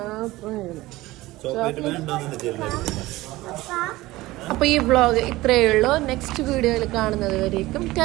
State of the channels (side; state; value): left; quieter; 18.5 dB